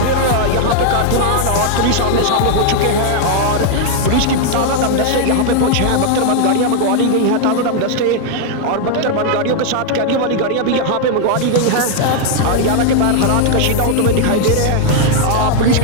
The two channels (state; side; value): different; both; correlation 0.00